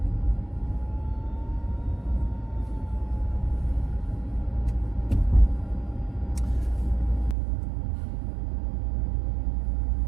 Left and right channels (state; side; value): drops out; left; at 7.4 s